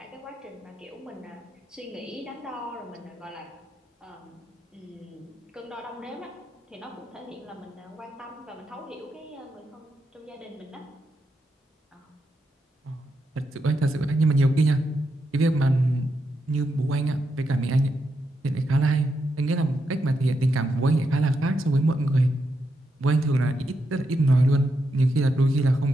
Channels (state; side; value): normal; both; correlation 0.83